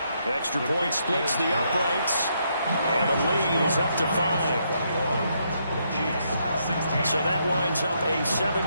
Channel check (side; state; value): both; inverted; correlation -0.76